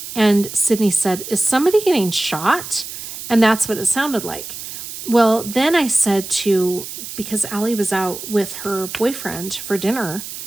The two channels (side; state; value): right; noise; hiss, 10 dB below the sound